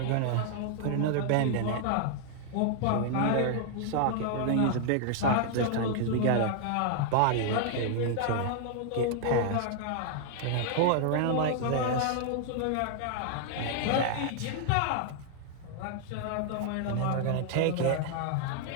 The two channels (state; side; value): different; both; correlation 0.00